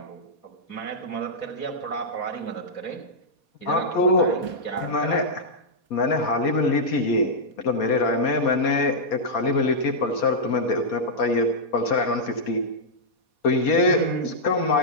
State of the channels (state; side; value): late; right; 4.2 ms